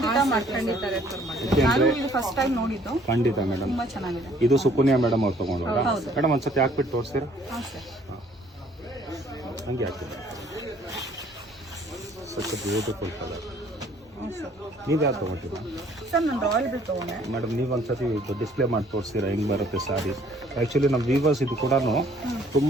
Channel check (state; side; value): normal; both; correlation 0.59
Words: ಮಾಡ್ತೀನಿ. ನಾನು ಇದು ಫಸ್ಟ್ ಟೈಮ್ ನೋಡಿದ್ದು. ಖಂಡಿತ ಮೇಡಮ್. ತುಂಬಾ ಚೆನ್ನಾಗಿದೆ. ಇದು ಸುಕನ್ಯಾ ಮೇಡಮ್ ಅವ್ರು ತೊಗೊಂಡ್ರ ಹೌದು. ಮೇಡಮ್? ಒಂದ್ಸತಿ ಹಾಕ್ಬಿಟ್ಟು ತೋರಿಸ್ತೀರಾ? ಹಾಂ ಸರ್. ಹಂಗೆ ಹಾಕ್ತೀರಾ? Such beautiful colour. ಹ್ಞೂ ಸರ್. ನೀವು ಯಾವ್ದು ತೊಗೊಂಡಿದ್ದೀರಾ ಸರ್ ನಾನು ರಾಯಲ್ ಬ್ಲೂ ತಗೊಂಡೆ. ಮೇಡಮ್? ನೀವು ಒಂದ್ಸತಿ ಡಿಸ್ಪ್ಲೇ ಮಾಡಿ ತೋರಿಸ್ತೀರಾ ಹೆಂಗೆ ಬರುತ್ತೆ ಸಾರಿ? ಆ್ಯಕ್ಚುಲಿ ನಮ್ಮ ವೀವರ್ಸ್ ಇದು ಕೂಡ